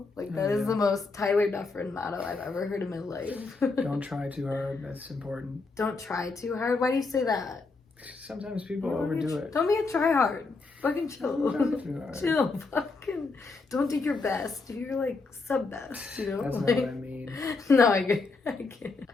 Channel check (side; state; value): right; quieter; 3.9 dB